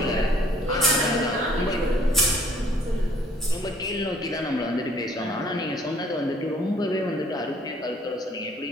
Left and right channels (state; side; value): normal; both; correlation 0.59